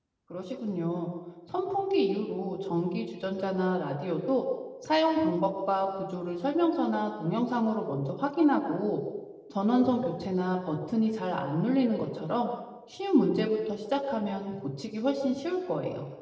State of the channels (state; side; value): identical; both; correlation 1.00